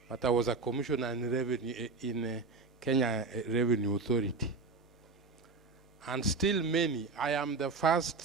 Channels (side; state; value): left; quieter; 4.1 dB